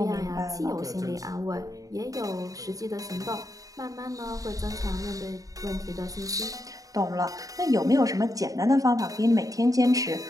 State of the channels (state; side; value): late; left; 0.17 ms